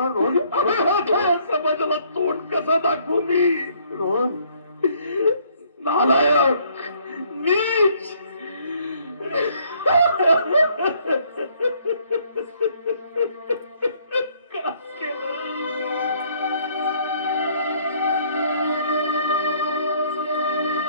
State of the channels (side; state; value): both; inverted; correlation -0.64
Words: रोहन समाजाला तोंड कसं दाखवू मी? रोहन नालायक, नीच.